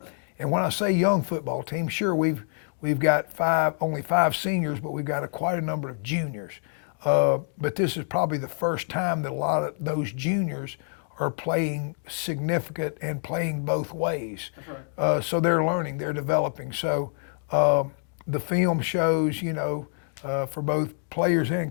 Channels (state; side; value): silent; right; 61 dB below the other